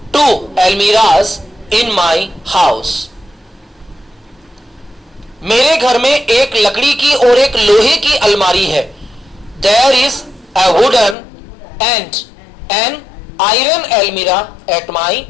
2 almirahs in my house. मेरे घर में एक लकड़ी की और एक लोहे की अलमारी है। There is a wooden and an iron एलमीरा एट माई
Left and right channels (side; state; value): right; drops out; at 11.2 s